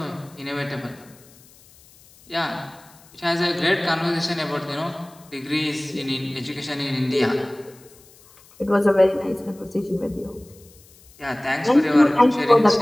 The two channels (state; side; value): noise; left; hiss, 26 dB below the sound